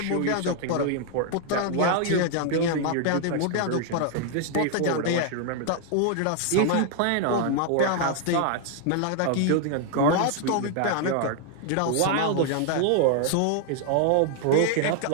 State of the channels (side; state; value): both; different; correlation 0.00